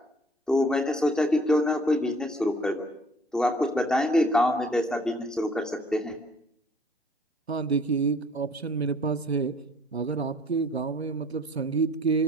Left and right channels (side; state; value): both; normal; correlation 0.55